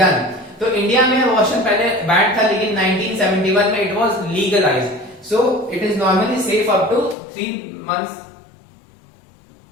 तो इंडिया में अबॉर्शन पहले बैन था, लेकिन 1971 में it was legalised, so it is normally safe up to 3 months.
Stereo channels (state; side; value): drops out; right; at 7.2 s